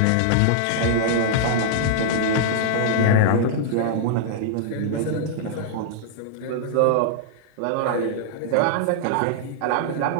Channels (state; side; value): different; both; correlation -0.01